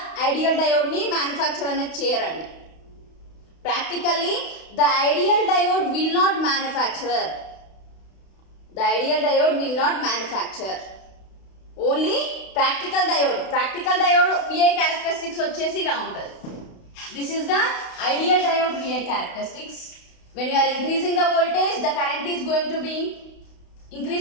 ideal డయోడ్ని మ్యానుఫ్యాక్చర్ అనేది చేయరండి. Practically the ideal diode will not manufacture. Only practical diode VI characteristics వచ్చేసి ఇలా ఉంటుంది. This is the ideal diode VI characteristics. When you are increasing the voltage, the current is going to be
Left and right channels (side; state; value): right; late; 32 ms